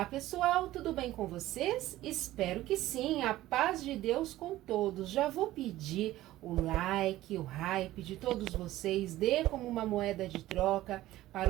pessoal, tudo bem com vocês? Espero que sim, a paz de Deus com todos. Já vou pedir o like, o hype de todos vocês, dê como uma moeda de troca para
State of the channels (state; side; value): quieter; left; 15.6 dB